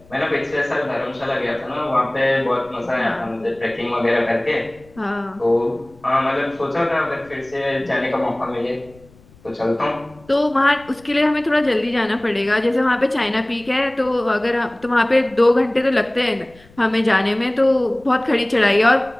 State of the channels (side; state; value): left; noise; rumble, 26 dB below the sound